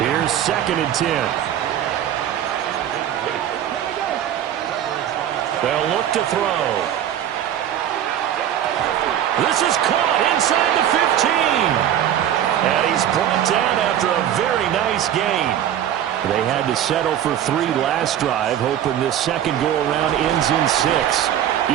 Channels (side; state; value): left; quieter; 10.6 dB